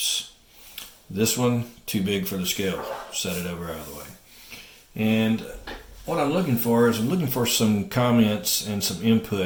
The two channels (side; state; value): both; identical; correlation 1.00